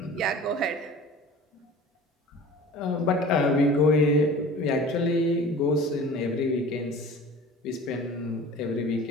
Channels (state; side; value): normal; both; correlation 0.41